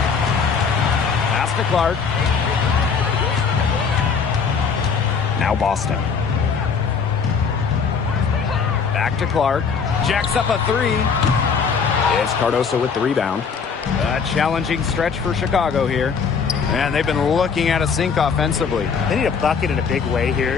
Pass to Clark. Now Boston. Back to Clark. Jacks up a 3. It's Cardoso with the rebound. A challenging stretch for Chicago here. And they've been looking at a sink offensively. They need a bucket in a big way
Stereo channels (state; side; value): quieter; right; 5.8 dB